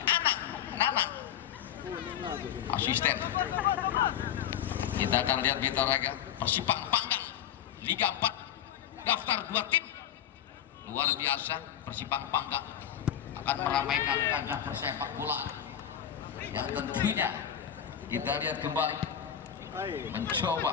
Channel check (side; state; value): right; quieter; 9.9 dB